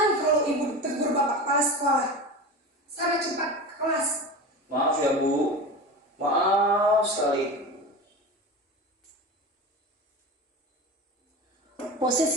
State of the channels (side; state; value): both; normal; correlation 0.29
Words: kalau ibu ditegur bapak kepala sekolah. Sana cepat ke kelas. Maaf ya, Bu. Maaf sekali.